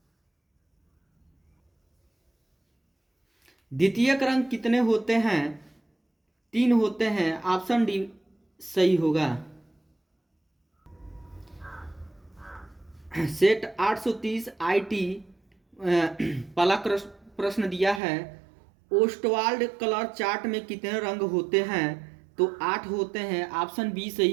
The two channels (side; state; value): left; drops out; at 18.0 s